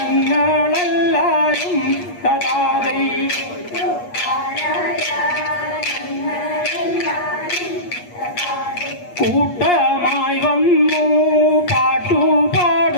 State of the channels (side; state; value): right; late; 8.4 ms